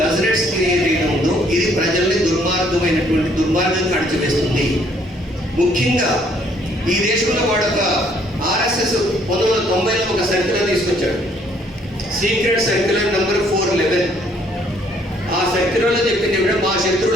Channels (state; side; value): normal; both; correlation 0.64